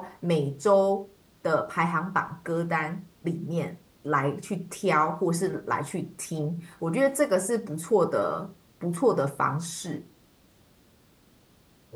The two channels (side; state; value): both; identical; correlation 1.00